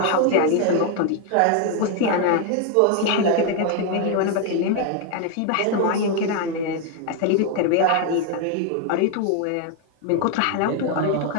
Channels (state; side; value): different; both; correlation 0.01